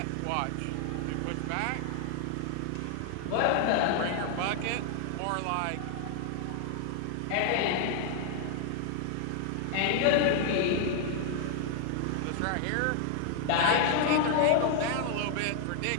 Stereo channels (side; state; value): both; different; correlation 0.00